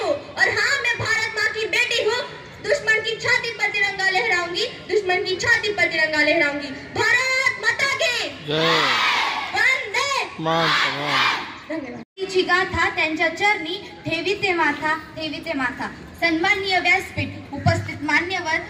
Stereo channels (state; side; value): identical; both; correlation 1.00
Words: जाऊंगी, दुश्मन की छाती पर तिरंगा लहराऊंगी। भारत माता की जय वंदे मातरम। धन्यवाद। तिची गाथा त्यांच्या चरणी ठेवीते माथा ठेवीते माथा। सन्माननीय व्यासपीठ, उपस्थित मान्यवर,